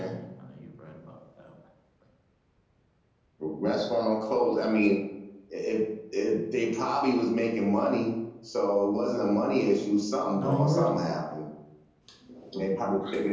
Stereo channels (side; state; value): both; identical; correlation 1.00